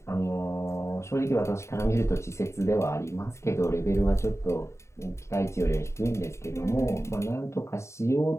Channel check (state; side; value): late; right; 0.14 ms